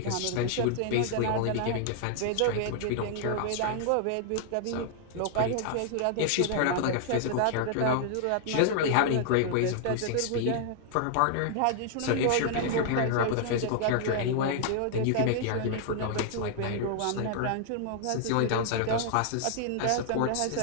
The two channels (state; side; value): different; both; correlation -0.01